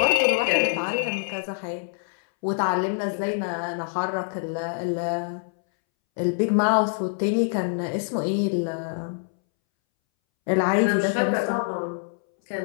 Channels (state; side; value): silent; right; 62 dB below the other